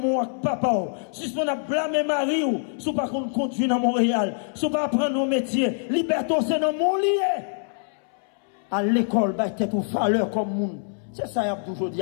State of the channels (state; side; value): silent; right; 62 dB below the other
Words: ak papa suspend à blâmer mari ou sous pas qu'on conduit dans Montréal sous pas apprendre nos métiers liberté c'est dans mon lié à l'école, bah, t'es une valeur comme monde. C'est ça, il y a toujours dit,